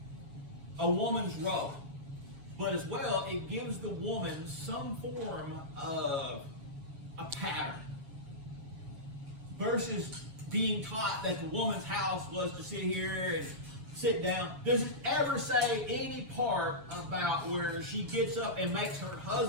a woman's role. But as well, it gives the woman some form of a pattern. Versus being taught that the woman's house was to sit here and sit down. Does it ever say any part about where she gets up and makes her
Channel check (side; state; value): left; late; 7.2 ms